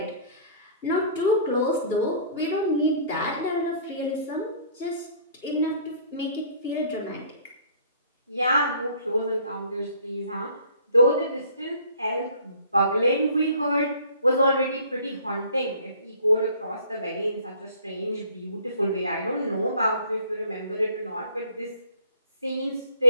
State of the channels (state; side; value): inverted; both; correlation -0.54